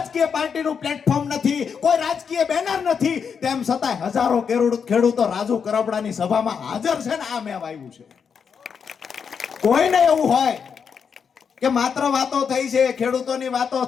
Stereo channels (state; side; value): quieter; right; 6.6 dB